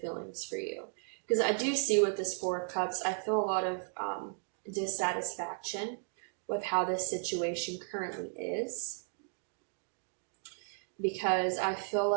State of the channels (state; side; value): silent; left; 55 dB below the other